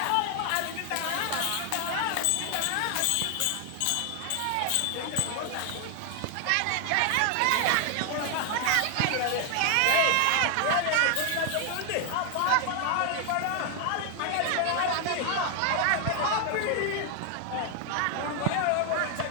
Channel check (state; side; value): different; both; correlation 0.00